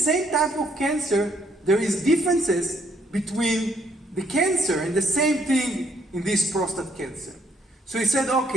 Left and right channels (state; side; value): normal; both; correlation 0.68